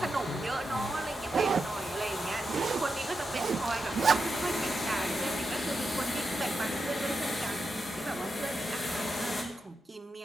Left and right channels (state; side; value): normal; both; correlation 0.87